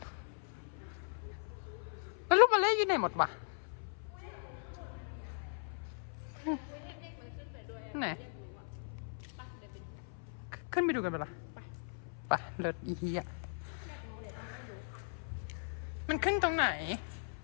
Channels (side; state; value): right; silent; 52 dB below the other